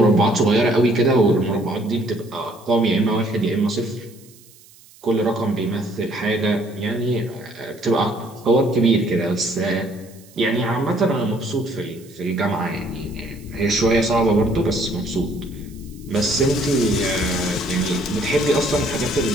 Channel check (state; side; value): noise; right; hiss, 25 dB below the sound